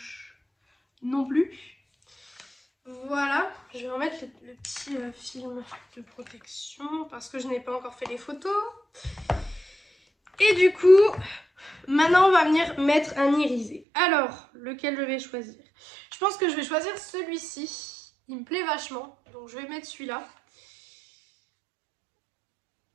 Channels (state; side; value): drops out; left; at 13.8 s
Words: non plus. Voilà, je vais remettre le petit film de protection parce que je n'ai pas encore fait les photos. Et du coup, maintenant on va venir mettre un irisé. Alors, lequel je vais choisir? Je pense que je vais choisir celui-ci. Il me plaît vachement, donc je vais mettre celui-là.